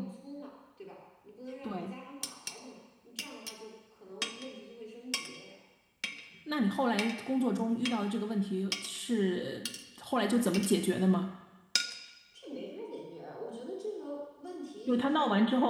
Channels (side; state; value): both; identical; correlation 1.00